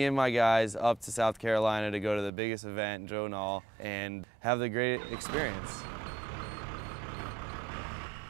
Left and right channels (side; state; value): left; drops out; at 2.3 s